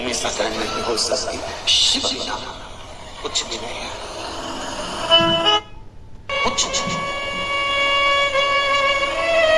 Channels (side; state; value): both; identical; correlation 1.00